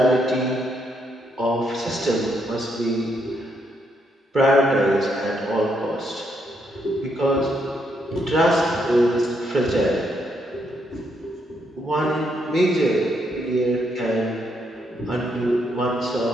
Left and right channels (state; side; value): normal; both; correlation 0.76